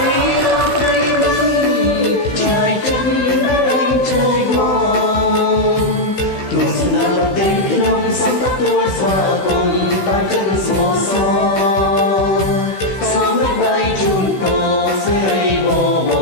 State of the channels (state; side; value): late; right; 16 ms